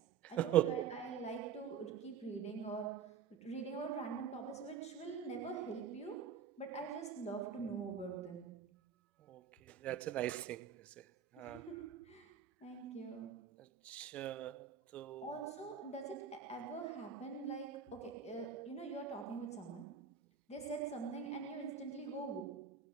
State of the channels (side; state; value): left; quieter; 7.4 dB